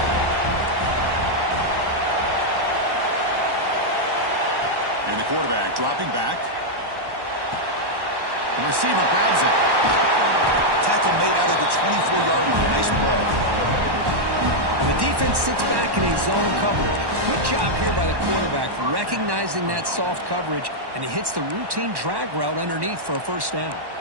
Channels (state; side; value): late; left; 1.1 ms